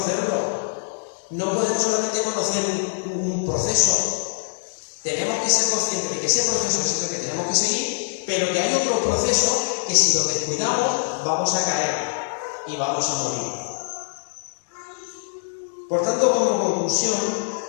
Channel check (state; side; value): silent; right; digital silence